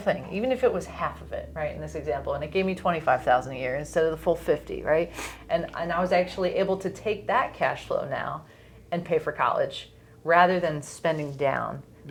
even if it was half of it, right? In this example, and it gave me 25,000 a year instead of the full 50, right? And I was actually able to take that cash flow now and pay for college rather than spending down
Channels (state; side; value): identical; both; correlation 1.00